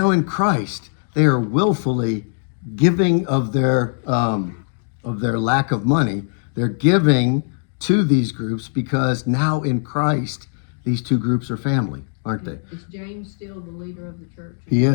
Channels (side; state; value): right; silent; digital silence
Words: in Christ, they are willfully giving of their lack of money. They're giving to these groups because now in Christ, these two groups are family, aren't they? Is James still the leader of the church? He